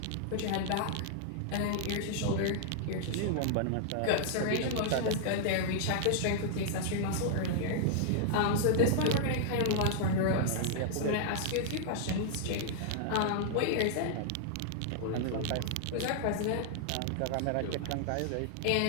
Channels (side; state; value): both; different; correlation -0.01